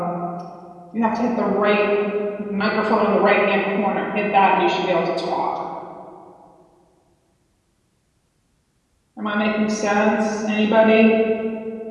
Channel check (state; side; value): identical; both; correlation 1.00